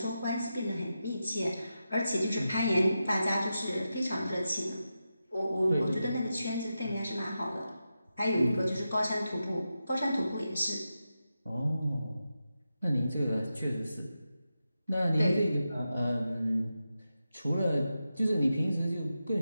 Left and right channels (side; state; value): both; inverted; correlation -0.90